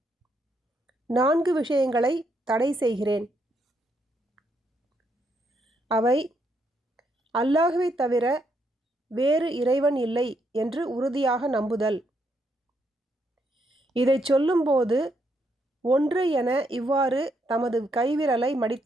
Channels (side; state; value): both; normal; correlation 0.76